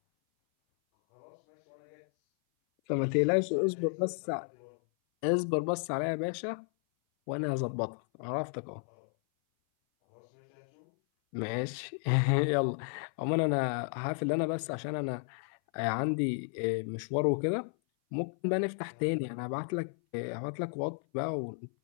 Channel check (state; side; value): silent; right; 56 dB below the other